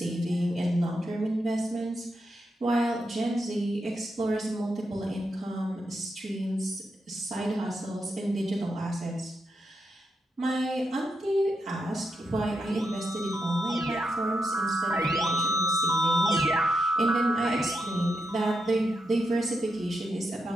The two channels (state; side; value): normal; both; correlation 0.83